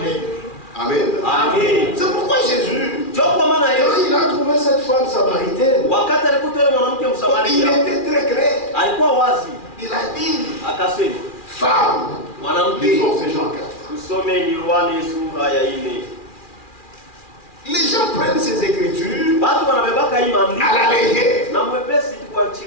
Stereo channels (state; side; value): late; right; 2.4 ms